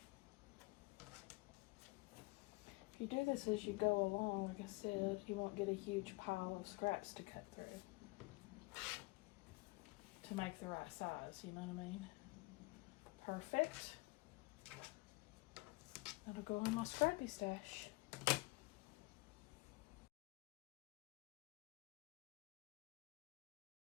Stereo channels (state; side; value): quieter; right; 24.4 dB